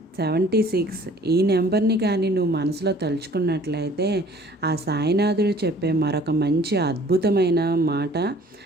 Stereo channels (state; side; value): normal; both; correlation 0.53